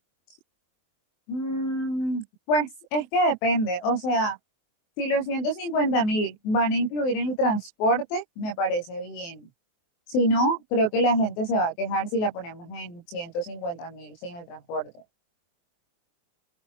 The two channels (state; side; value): late; right; 23 ms